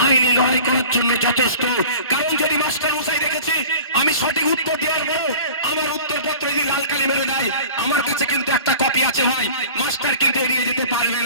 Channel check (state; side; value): inverted; both; correlation -0.42